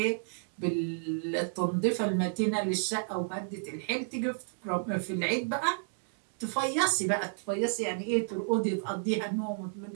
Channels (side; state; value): left; silent; digital silence